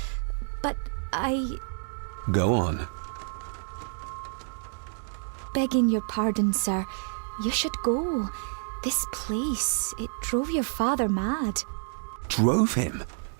But Go on. Begging your pardon, sir. You should go. This place, it drove your father mad. Drove him?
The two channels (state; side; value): silent; left; digital silence